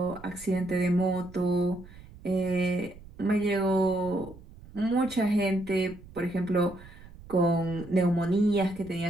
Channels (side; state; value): right; noise; rumble, 19 dB below the sound